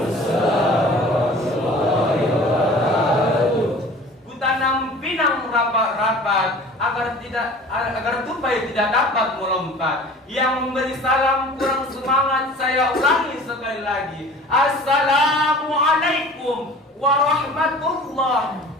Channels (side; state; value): both; normal; correlation 0.44